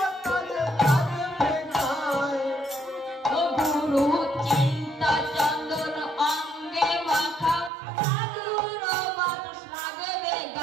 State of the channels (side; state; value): left; drops out; at 7.7 s